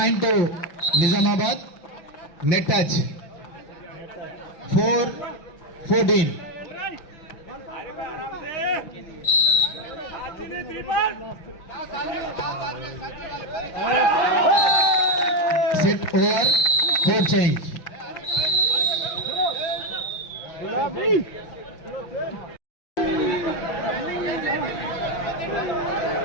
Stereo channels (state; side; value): late; right; 5.9 ms